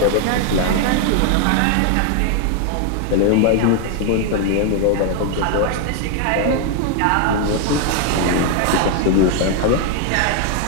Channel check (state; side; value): different; both; correlation 0.00